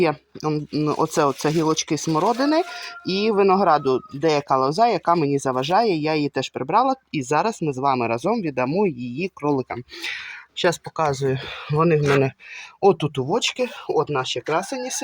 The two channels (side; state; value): both; identical; correlation 1.00